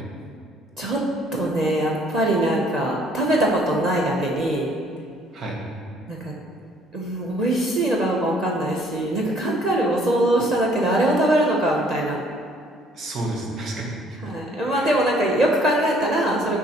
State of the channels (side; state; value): both; normal; correlation 0.60